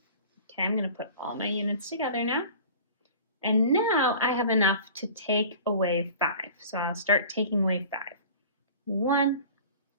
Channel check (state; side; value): inverted; both; correlation -0.42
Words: I'm going to put all my units together now. And now I have enough to take away 5. So I'll start taking away 5. 1,